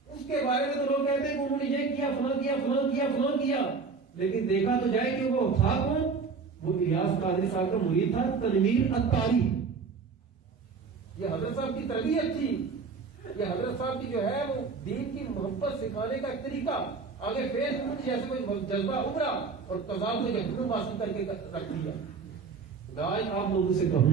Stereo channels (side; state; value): left; quieter; 4.9 dB